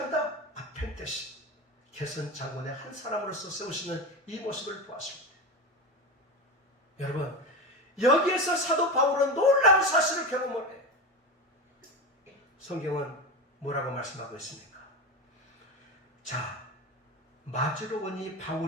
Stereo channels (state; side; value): normal; both; correlation 0.22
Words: 아펜테신 개선 장군의 한 사람으로서 세우시는 이 모습을 보았을 때 여러분, 여기에서 사도 바울은 놀라운 사실을 경험을 해요. 성경은 뭐라고 말씀하고 있습니까? 자, 맞으러 오니